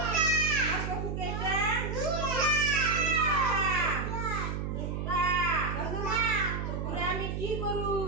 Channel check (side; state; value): right; noise; hum, 3 dB below the sound